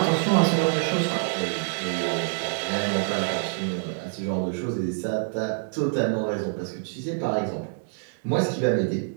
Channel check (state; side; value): silent; left; digital silence